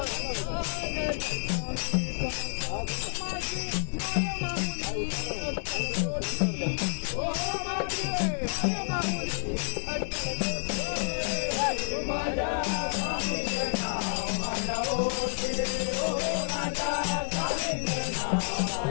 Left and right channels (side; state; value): right; silent; digital silence